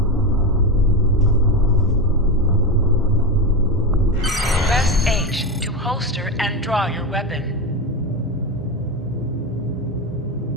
Press H to holster and draw your weapon.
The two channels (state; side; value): normal; both; correlation 0.16